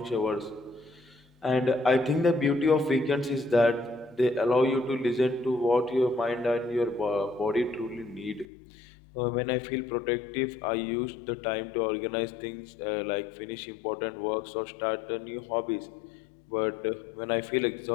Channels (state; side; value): drops out; right; at 8.5 s